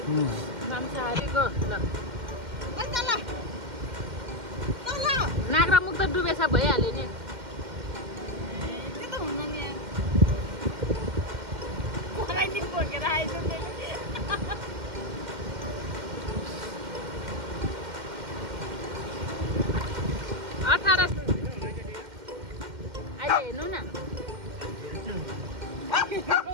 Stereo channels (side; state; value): left; late; 2.1 ms